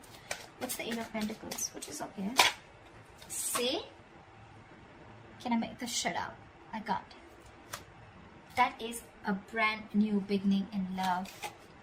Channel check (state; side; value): identical; both; correlation 1.00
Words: What's the Eight of Pentacles? Which is okay. See? Can I make this shut up? I got it. That is a brand new beginning in love.